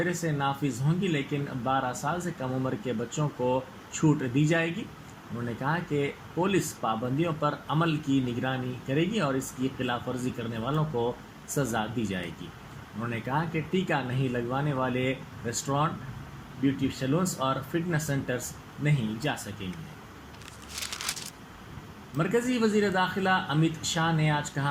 سے نافذ ہوں گی، لیکن 12 سال سے کم عمر کے بچوں کو چھوٹ دی جائے گی۔ انہوں نے کہا کہ پولیس پابندیوں پر عمل کی نگرانی کرے گی اور اس کی خلاف ورزی کرنے والوں کو سزا دی جائے گی۔ انہوں نے کہا کہ ٹیکہ نہیں لگوانے والے ریسٹورانٹ، بیوٹی سیلونز اور فٹنس سینٹرز نہیں جا سکیں گے۔ مرکزی وزیر داخلہ امت شاہ نے آج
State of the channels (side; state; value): both; identical; correlation 1.00